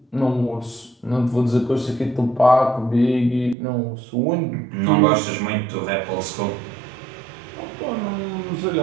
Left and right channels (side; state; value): left; drops out; at 3.6 s